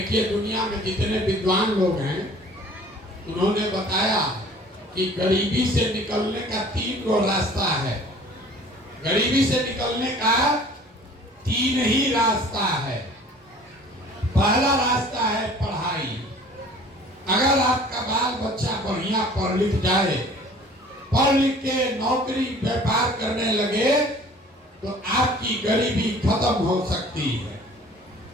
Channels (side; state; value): both; normal; correlation 0.49